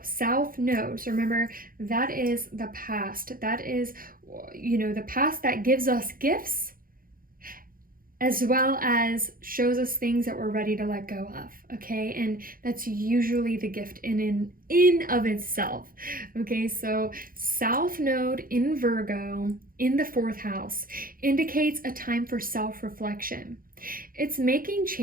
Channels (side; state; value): left; late; 0.41 ms